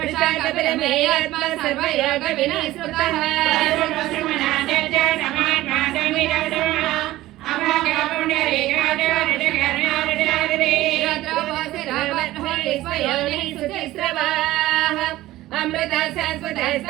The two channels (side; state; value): left; quieter; 16.3 dB